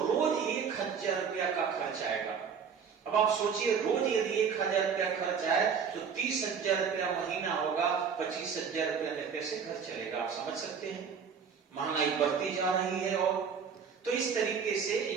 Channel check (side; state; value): left; quieter; 6.5 dB